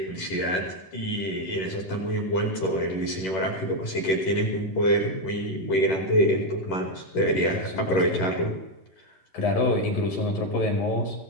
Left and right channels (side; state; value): right; late; 11 ms